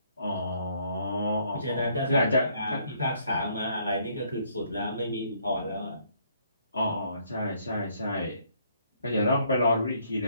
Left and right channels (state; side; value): inverted; both; correlation -0.67